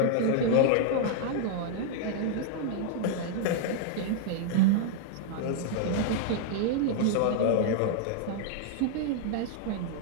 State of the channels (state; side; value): different; both; correlation 0.00